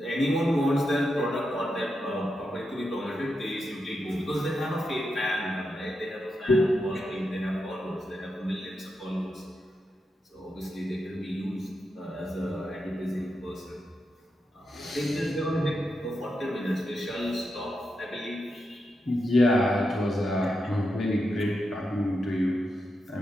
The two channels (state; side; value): normal; both; correlation 0.86